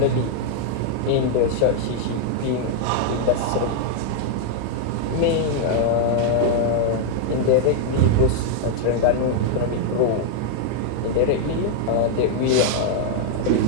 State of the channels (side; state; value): both; different; correlation 0.00